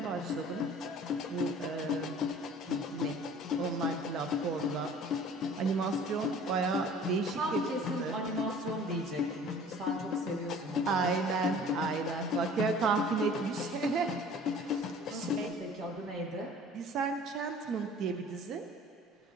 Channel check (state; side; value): normal; both; correlation 0.47